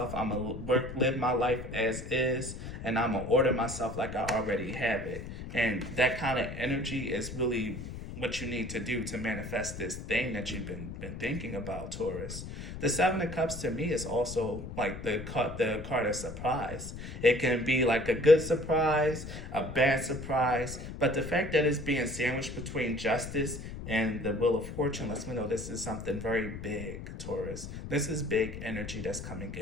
I'm gonna live my life as is, and I'm gonna order myself like I already have it. And that kind of energy is really what you need to do to manifest this thing that you've been thinking about, Taurus. The Seven of Cups to me is also like the card of surprise. It can be like a good surprise, a bad surprise, but the fact that it's being sandwiched between Justice and the Wheel of Fortune lets me know this is something very big, Taurus. This is big energy that's coming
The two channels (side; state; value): left; noise; rumble, 9 dB below the sound